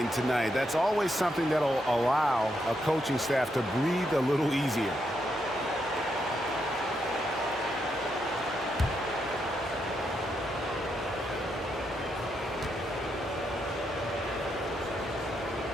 tonight. That's always something that'll allow a coaching staff to breathe a little easier.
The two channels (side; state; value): both; normal; correlation 0.80